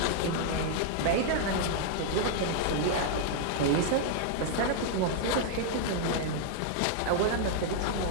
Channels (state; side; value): different; both; correlation 0.00